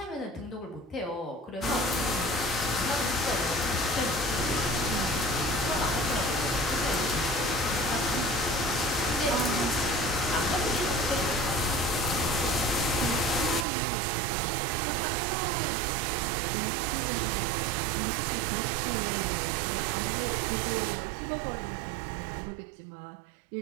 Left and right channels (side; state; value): left; drops out; at 13.7 s